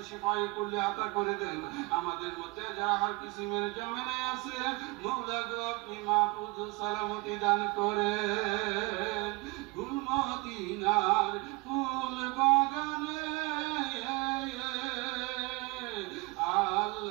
শিফায়ে কুল্লি আতা করে দেন, আমাদের মধ্যে যারা হার কিসিমের জামেলায় আছে মওলা গো আপনি মাহফুজ সালামতি দান করেন। গুলমদিনার ফুল বাগানে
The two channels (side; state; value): left; quieter; 24.9 dB